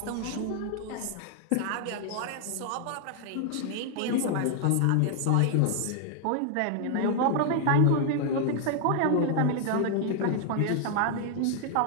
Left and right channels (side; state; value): both; different; correlation 0.00